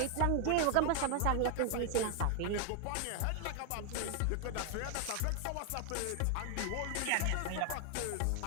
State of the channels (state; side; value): different; both; correlation 0.00